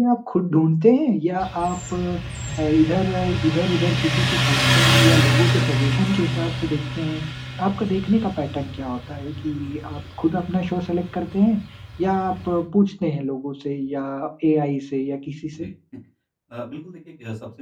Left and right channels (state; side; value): identical; both; correlation 1.00